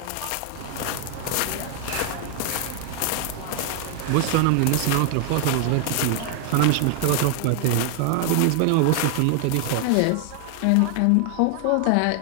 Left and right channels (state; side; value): different; both; correlation 0.00